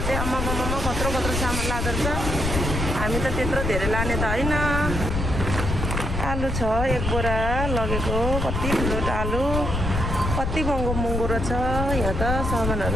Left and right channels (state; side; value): noise; left; rumble, 2 dB below the sound